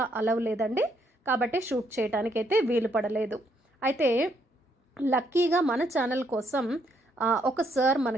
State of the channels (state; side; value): normal; both; correlation 0.73